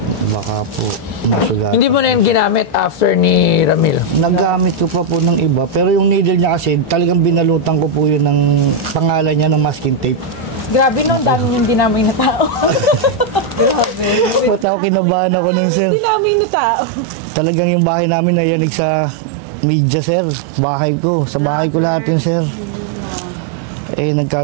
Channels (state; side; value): drops out; left; at 14.7 s